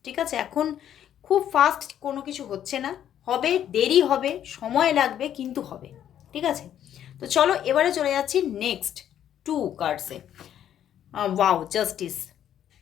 ঠিক আছে? এখন খুব ফাস্ট কোনো কিছু হচ্ছে না, হবে, দেরি হবে, সময় লাগবে, কিন্তু হবে, ঠিক আছে? তো চলো এবারে চলে যাচ্ছি নেক্সট 2 কার্ডসে। Wow, justice.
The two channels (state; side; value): quieter; right; 10.4 dB